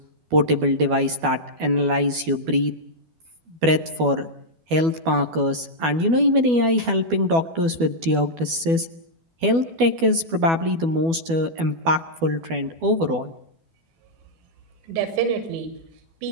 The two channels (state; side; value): late; left; 12 ms